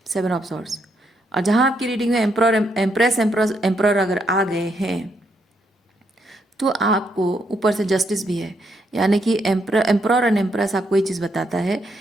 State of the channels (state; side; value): normal; both; correlation 0.76